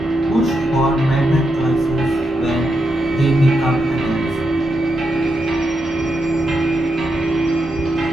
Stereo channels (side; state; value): both; normal; correlation 0.84